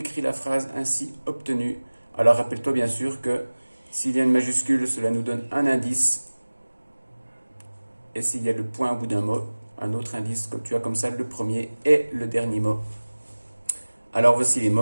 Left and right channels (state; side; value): inverted; both; correlation -1.00